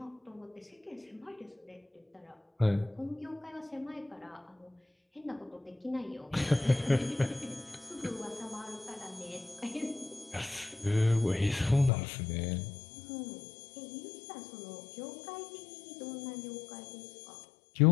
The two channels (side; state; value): right; drops out; at 11.9 s